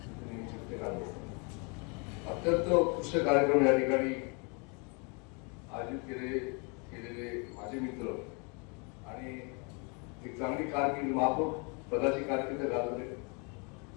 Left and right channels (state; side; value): quieter; right; 33.7 dB